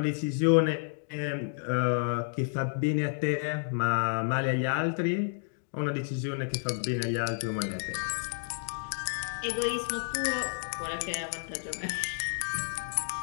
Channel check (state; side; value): silent; right; digital silence